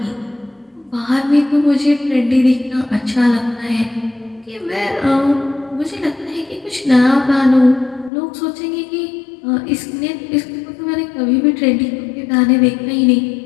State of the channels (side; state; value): right; drops out; at 8.1 s